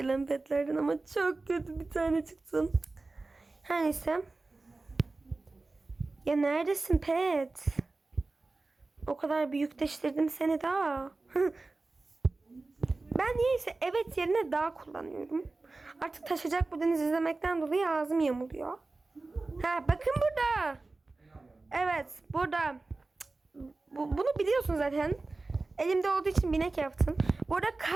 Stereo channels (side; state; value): left; quieter; 3.4 dB